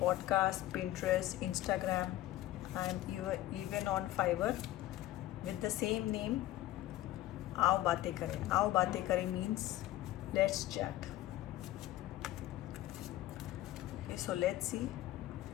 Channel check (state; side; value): quieter; right; 14.9 dB